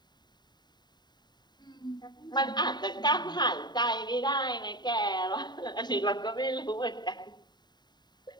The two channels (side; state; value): right; late; 0.21 ms